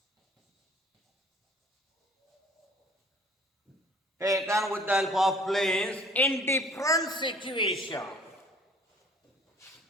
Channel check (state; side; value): normal; both; correlation 0.53